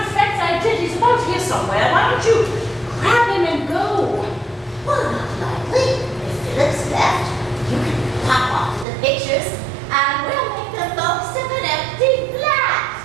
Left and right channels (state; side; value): drops out; left; at 8.8 s